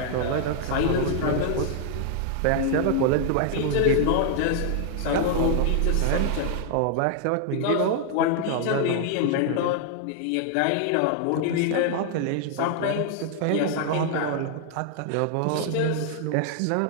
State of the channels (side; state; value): both; different; correlation 0.00